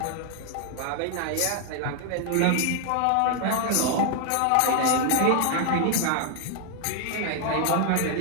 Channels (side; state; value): both; different; correlation 0.00